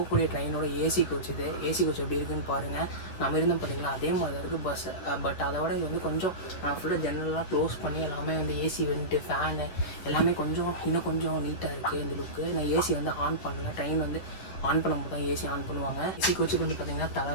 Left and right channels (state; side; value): late; right; 10 ms